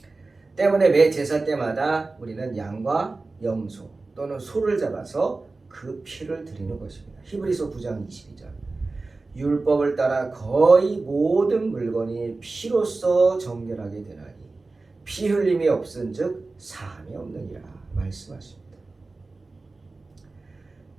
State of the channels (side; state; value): left; quieter; 3.5 dB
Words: 때문에 매 제사 때마다 우리는 양과 염소 또는 소를 잡아서 그 피를 드리는 것입니다. 히브리서 9장 22절. 율법을 따라 거의 모든 물건이 피로써 정결하게 되나니 피 흘림이 없은즉 사함이 없느니라 말씀하십니다.